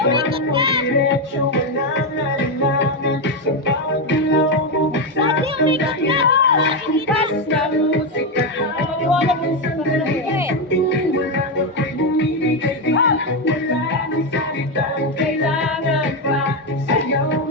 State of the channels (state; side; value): normal; both; correlation 0.08